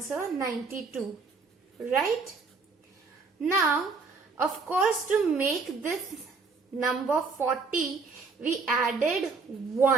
92, right? Now, of course, to make this number 40, we added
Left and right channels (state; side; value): quieter; left; 4.4 dB